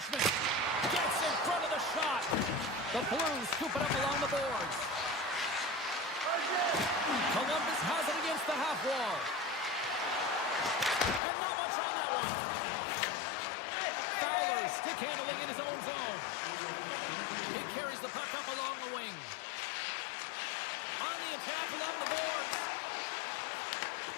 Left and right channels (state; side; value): drops out; right; at 11.2 s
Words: Gets in front of the shot. The Blues scoop it up along the boards. Columbus has it against the half wall. And not much on that one. Fowler stick handling in his own zone. He carries the puck up along the wing. On the attack along the boards.